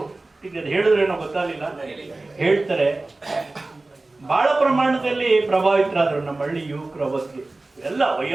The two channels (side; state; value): left; quieter; 3.1 dB